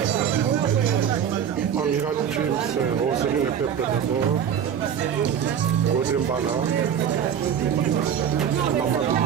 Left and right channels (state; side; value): quieter; left; 8.6 dB